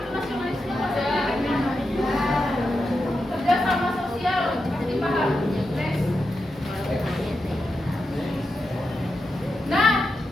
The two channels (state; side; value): normal; both; correlation 0.88